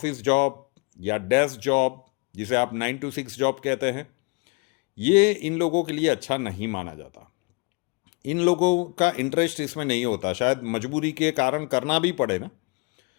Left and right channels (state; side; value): quieter; right; 29.4 dB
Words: जॉब या डेस्क जॉब, जिसे आप 9 to 6 जॉब कहते हैं, ये इन लोगों के लिए अच्छा नहीं माना जाता। इन लोगों का इंटरेस्ट इसमें नहीं होता, शायद मजबूरी के कारण करना भी पड़े ना,